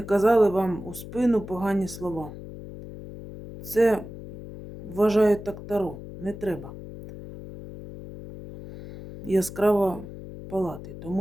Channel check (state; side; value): noise; left; hum, 13 dB below the sound